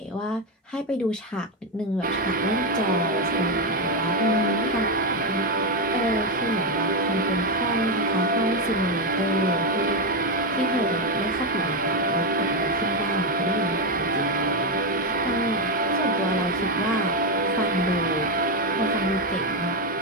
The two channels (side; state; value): both; normal; correlation 0.07